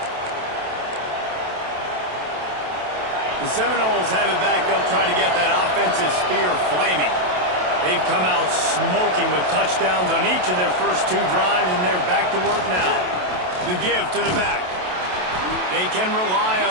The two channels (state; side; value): late; left; 27 ms